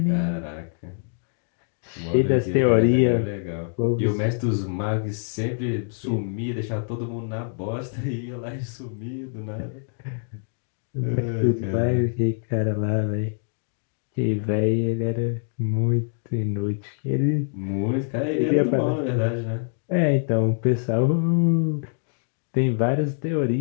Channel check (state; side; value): silent; right; digital silence